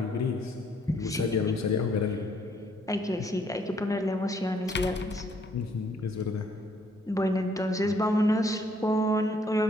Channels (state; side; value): normal; both; correlation 0.66